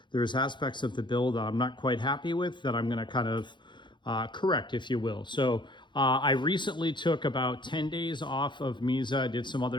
there's aspects of the build I'm not quite happy with that I'm going to kind of correct, if you will. So I recently took about 10 days off of MiZa. I did some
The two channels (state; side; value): late; right; 0.23 ms